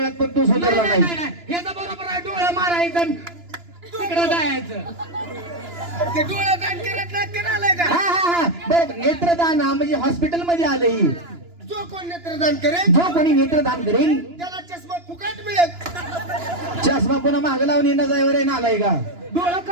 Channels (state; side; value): late; left; 2.9 ms